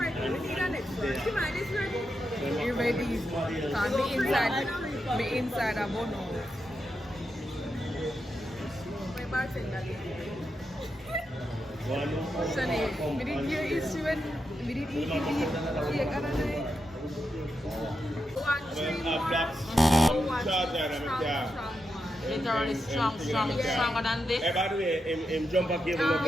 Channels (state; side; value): normal; both; correlation 0.86